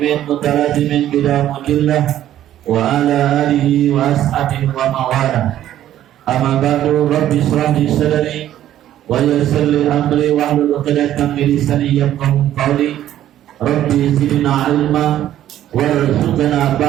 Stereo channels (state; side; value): quieter; left; 12.2 dB